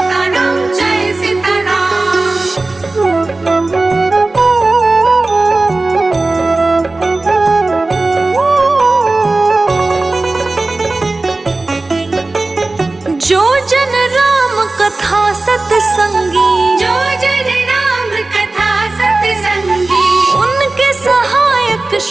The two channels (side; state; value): left; quieter; 3.2 dB